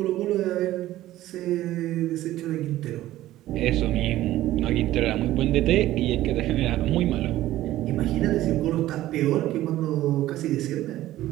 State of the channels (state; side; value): quieter; left; 14.9 dB